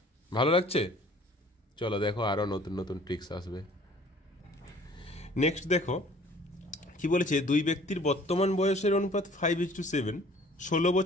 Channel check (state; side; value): normal; both; correlation 0.53